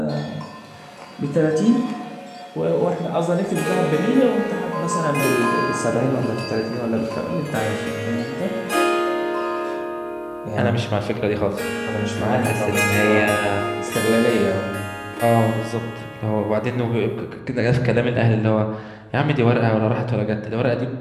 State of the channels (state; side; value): identical; both; correlation 1.00